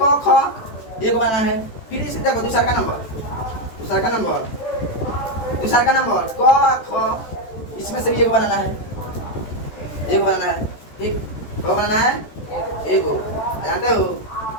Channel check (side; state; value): right; late; 14 ms